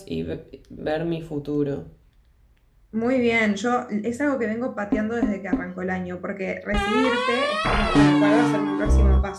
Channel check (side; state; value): both; identical; correlation 1.00